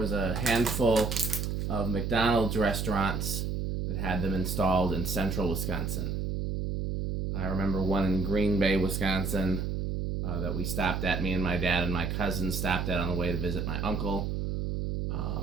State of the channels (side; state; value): right; noise; hum, 1 dB below the sound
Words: a handful of McDonald's restaurants that had them installed in central Wisconsin. I remember one in Green Bay, Wisconsin, that we stopped at. Me and my dad and my cousin stopped at on the way to visit my uncle.